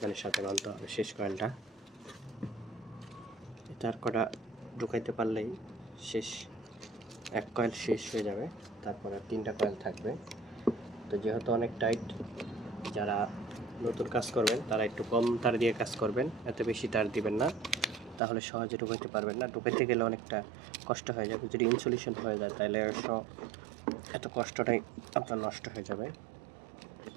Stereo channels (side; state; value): left; drops out; at 18.2 s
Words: সাথে বানতে হবে শেষ কয়েলটা। তার কটা ঢুকাইতে পারলেই শেষ, 1 কয়েল শেষ হয়ে যাবে, তারপরে 3টা কয়েল থাকবে। তো যেহেতু অনেক টাইট, যারা নতুন কাজ করবেন তারা একটু কম তার দিয়ে কাজ করবেন, এত বেশি তার দিবেন না, তাহলে সহজে ঢুকাইতে পারবেন না। ঢুকাইতে গেলে অনেকটা কষ্ট হয়ে যাবে, যদি ইনসুলেশন হয়ে যায় তাহলে এত কষ্টটাই আপনার নষ্ট হয়ে যাবে।